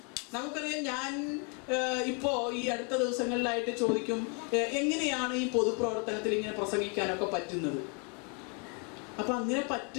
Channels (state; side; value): quieter; right; 36.6 dB